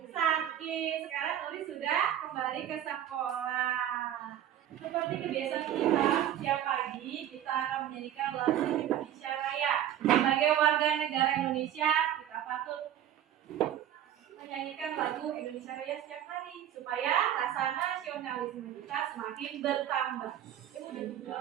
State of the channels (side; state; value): left; quieter; 11.1 dB